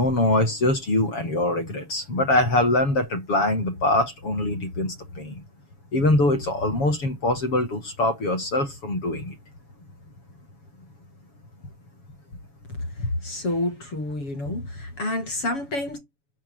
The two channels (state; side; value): late; right; 7.1 ms